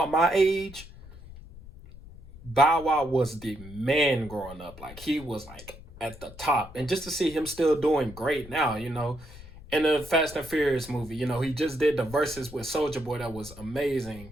my age, Bow Wow was the man growing up. Like, he was like at the top. And just to see him still doing great now, in the Fast and Furious movie, he just did the verses with Soulja Boy. That was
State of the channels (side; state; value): left; noise; rumble, 17 dB below the sound